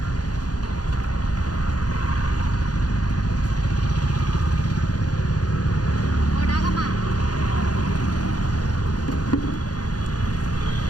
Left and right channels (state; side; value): late; right; 0.69 ms